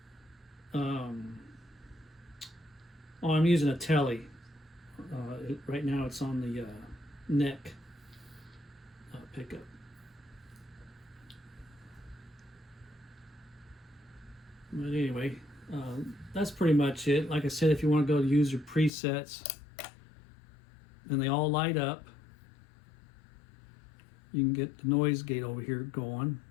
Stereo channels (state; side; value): drops out; right; at 18.9 s